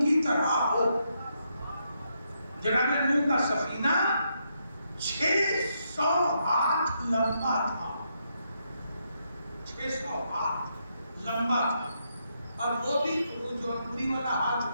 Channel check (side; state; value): both; inverted; correlation -0.79